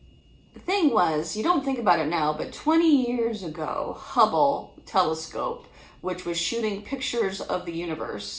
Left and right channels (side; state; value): both; identical; correlation 1.00